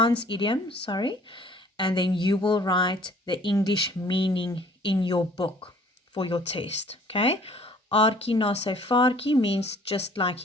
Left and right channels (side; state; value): both; normal; correlation 0.54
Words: idiom, and then you will write the English meaning in your book for your test, okay? Aartjie na sy vaartjie means just like